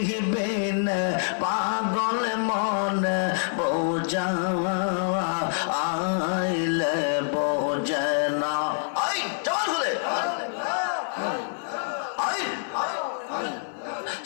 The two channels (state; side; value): silent; right; 61 dB below the other